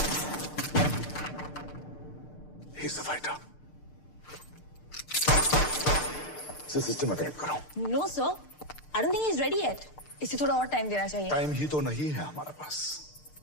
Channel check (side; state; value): right; late; 6.7 ms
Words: He's the fighter. सिस्टम में कनेक्ट करो। No sir, I don't think he is ready yet. इसे थोड़ा और टाइम देना चाहिए। टाइम ही तो नहीं है हमारे पास।